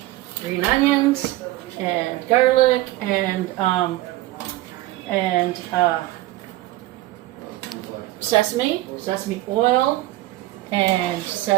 green onions and garlic and sesame oil and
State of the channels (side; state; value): left; quieter; 17.3 dB